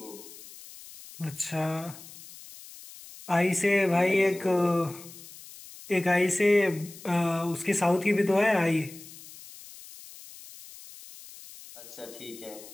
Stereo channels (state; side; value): noise; left; hiss, 18 dB below the sound